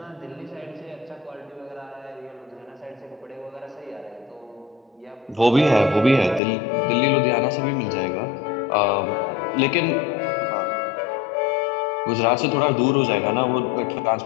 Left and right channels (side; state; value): right; drops out; at 6.4 s